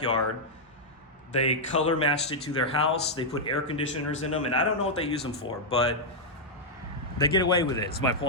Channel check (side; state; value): both; normal; correlation -0.05